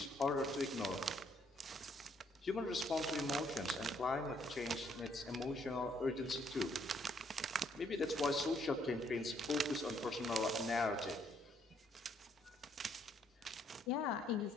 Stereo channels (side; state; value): both; normal; correlation 0.69